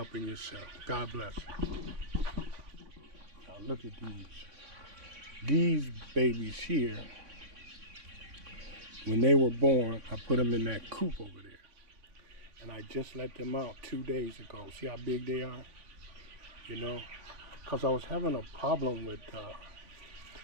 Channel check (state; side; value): late; left; 3.6 ms